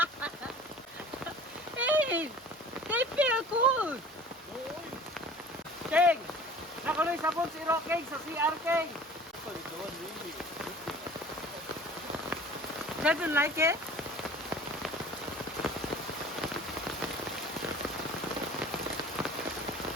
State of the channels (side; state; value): both; normal; correlation 0.44